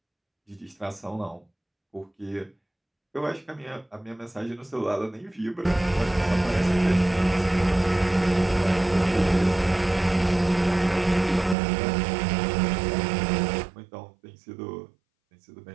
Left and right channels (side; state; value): left; drops out; at 11.6 s